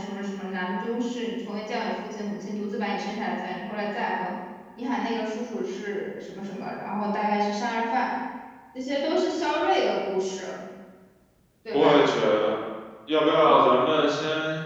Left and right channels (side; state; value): both; identical; correlation 1.00